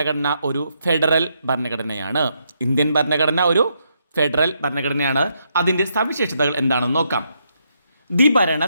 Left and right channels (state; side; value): inverted; both; correlation -0.78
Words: ഒരു ഫെഡറൽ ഭരണഘടനയാണ്. ഇന്ത്യൻ ഭരണഘടന ഒരു ഫെഡറൽ ഭരണഘടനയാണ്. അതിൻ്റെ സവിശേഷതകൾ എന്താണെന്ന് നോക്കാം. ദ്വിഭരണ